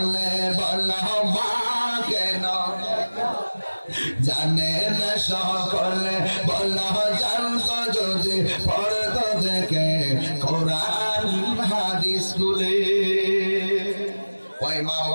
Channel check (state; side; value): inverted; both; correlation -1.00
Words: বল মা কেন জানে না সকলে বল জানতো যদি পড়তো দেখে কোরআন হাদিস স্কুলে ওই মা